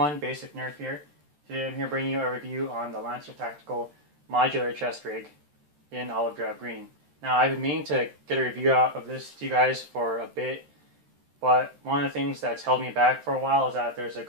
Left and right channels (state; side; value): late; left; 13 ms